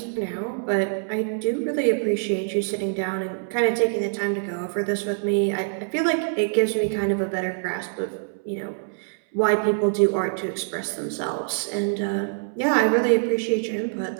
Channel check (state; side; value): silent; left; 62 dB below the other